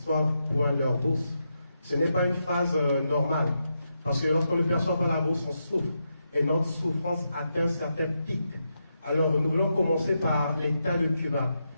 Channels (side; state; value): both; inverted; correlation -0.84